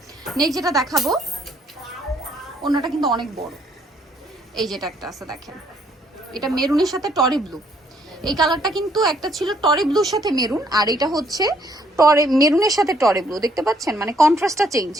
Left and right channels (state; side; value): normal; both; correlation 0.67